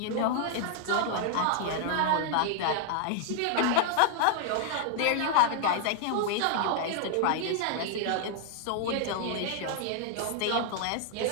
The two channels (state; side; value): different; both; correlation 0.00